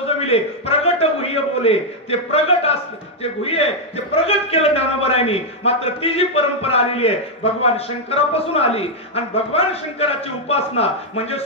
प्रगट गुह्य बोले. ते प्रगट ते गुह्य ते प्रगट केलं ज्ञानोबरायांनी. मात्र ती जी परंपरा आलेली आहे भगवान शंकरापासून आली. आणि भगवान शंकराची उपासना म्हणजे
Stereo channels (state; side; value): normal; both; correlation -0.01